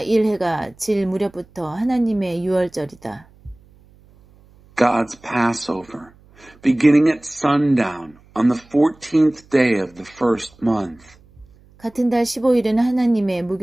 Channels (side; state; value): right; noise; hum, 28 dB below the sound